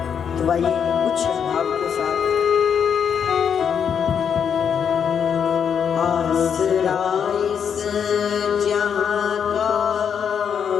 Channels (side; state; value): right; quieter; 7.5 dB